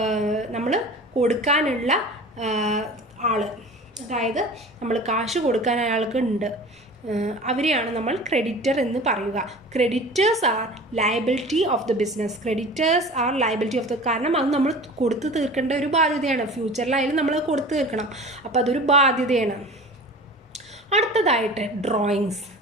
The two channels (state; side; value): normal; both; correlation 0.39